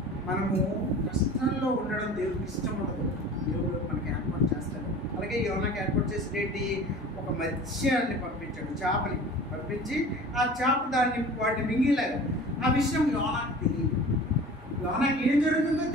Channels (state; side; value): normal; both; correlation 0.40